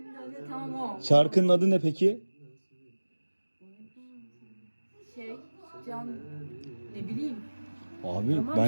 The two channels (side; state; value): both; inverted; correlation -1.00